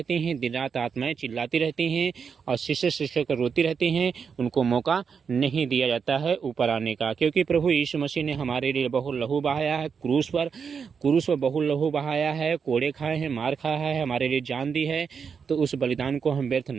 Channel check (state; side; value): quieter; left; 6.2 dB